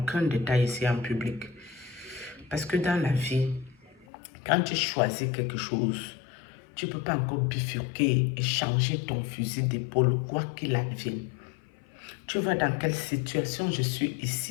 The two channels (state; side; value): drops out; right; at 4.0 s